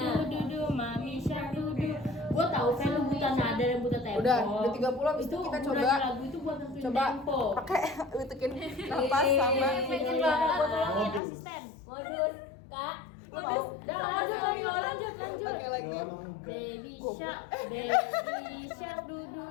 du du, mami shark du du. Gua tahu kan lu buta nada dan buta tempo. Udah 30 habis itu kita coba gunanya lagu itu buat nentuin tempo. pakai bisikin nafas sama Pengen banget buat tolongin Modus. asisten. Modus, kak. Lu mau Udah lanjut. pakai lagi. Doang enggak. Baby shark du du.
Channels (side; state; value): right; drops out; at 11.2 s